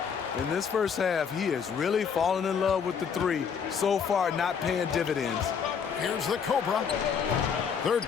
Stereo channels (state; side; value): quieter; right; 6.8 dB